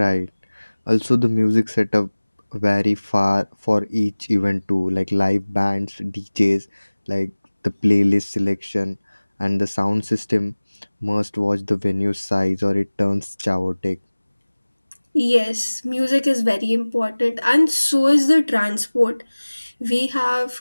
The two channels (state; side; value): inverted; both; correlation -1.00